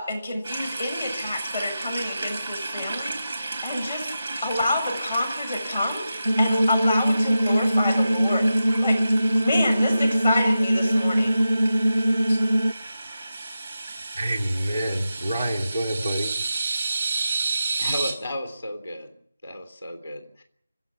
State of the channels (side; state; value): both; inverted; correlation -0.91